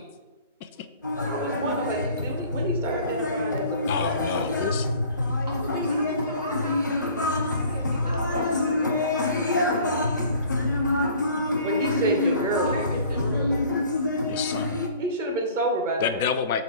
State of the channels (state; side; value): inverted; both; correlation -0.49